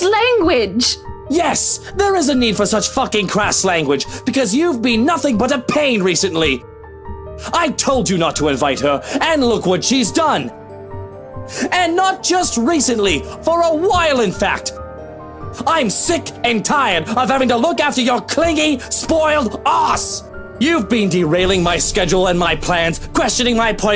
language. Yes, there is a need for such fucking crass language, because you've been nothing but a pain recently. I told you not to invite her, and look what she's done. And not just recently, for a while in fact. I'm sick and tired of having to look after your clingy, spoiled ass. You've been derailing my schedule and my plans, questioning my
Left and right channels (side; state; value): both; identical; correlation 1.00